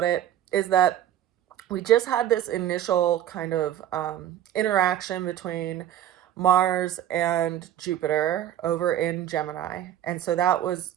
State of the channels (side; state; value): left; quieter; 11.4 dB